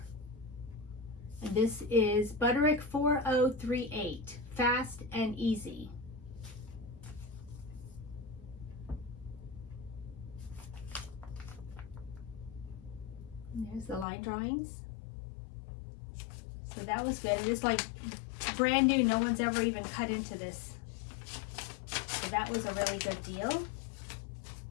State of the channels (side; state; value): right; drops out; at 14.1 s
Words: And this is Butterick 4038, fast and easy. And there's the line drawings. So that was good. It is like brand new. No one's ever even cut into this. So that was a really good deal.